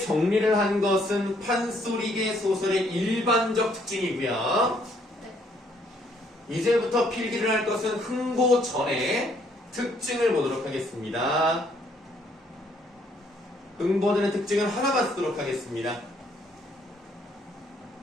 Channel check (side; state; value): both; normal; correlation 0.67